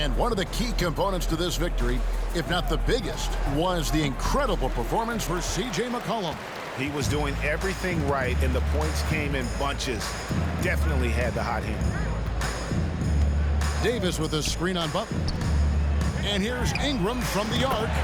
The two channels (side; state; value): both; identical; correlation 1.00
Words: one of the key components to this victory, if not the biggest, was the incredible performance for C.J. McCollum. He was doing everything right, and the points came in bunches. Definitely had the hot hand. Davis with a screen on Butler. And here's Ingram from the arc.